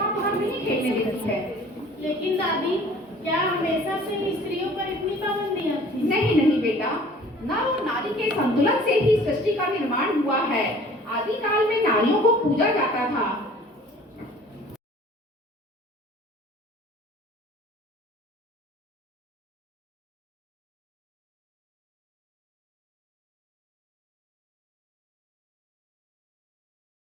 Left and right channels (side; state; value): both; normal; correlation 0.49